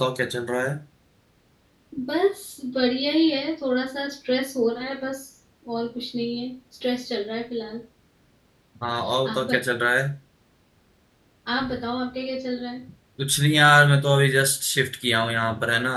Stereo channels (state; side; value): identical; both; correlation 1.00